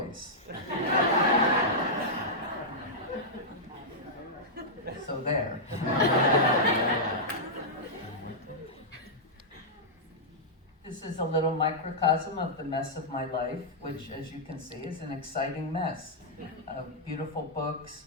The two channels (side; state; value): both; normal; correlation -0.09